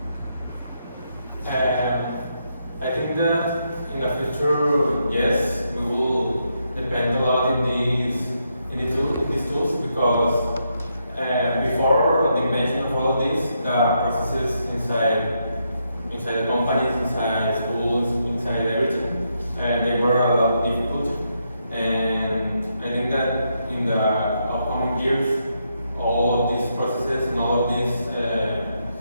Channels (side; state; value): both; inverted; correlation -0.80